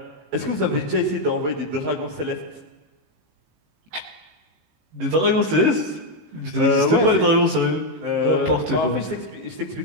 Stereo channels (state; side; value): late; left; 18 ms